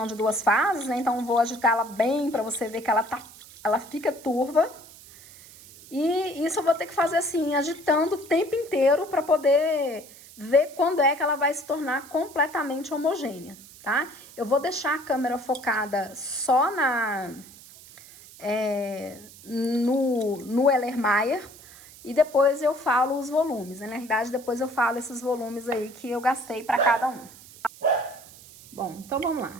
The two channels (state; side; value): noise; right; hiss, 20 dB below the sound